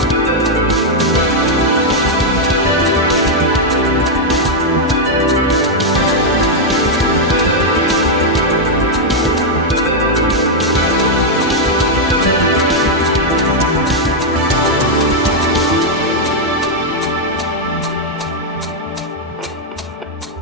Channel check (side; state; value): both; normal; correlation -0.02